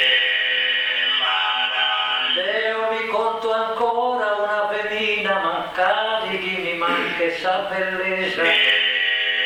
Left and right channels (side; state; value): both; identical; correlation 1.00